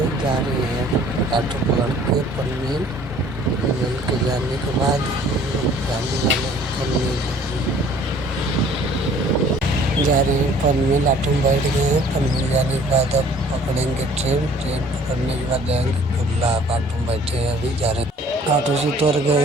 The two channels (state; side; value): normal; both; correlation 0.54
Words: जा रहे हैं ऑटो पकड़ के पनवेल। पनवेल के जाने के बाद जाने वाले पनवेल जा रहे हैं। पनवेल ऑटो में बैठ गए हैं। पनवेल जाने के बाद अब पकड़ेंगे ट्रेन। ट्रेन पकड़ने के बाद जाएंगे कुल्ला। ऑटो में बैठे हैं, अभी जा रहे हैं। ऑटो से उतर गए